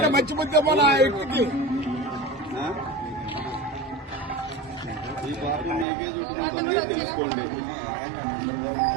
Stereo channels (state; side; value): drops out; left; at 5.9 s